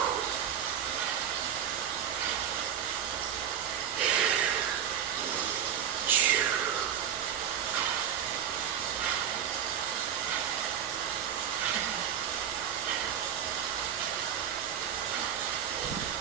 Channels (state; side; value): quieter; left; 9.0 dB